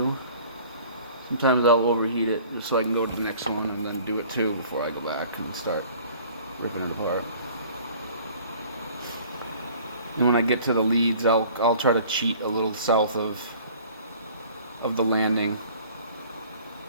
Sometimes I'll overheat it just so I can go to the next one and then do it too before I go back and start ripping it apart. And when I get to the leads, I'll try to cheat a little south of the landing,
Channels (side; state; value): both; inverted; correlation -0.50